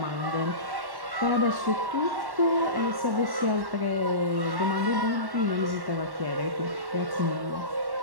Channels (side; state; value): left; late; 1.1 ms